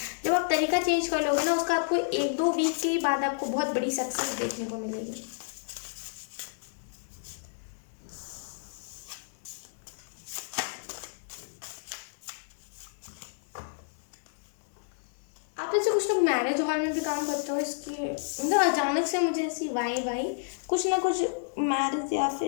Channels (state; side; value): silent; right; digital silence